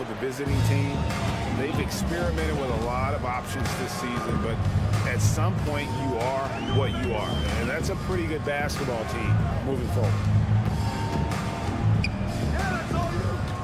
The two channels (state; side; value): identical; both; correlation 1.00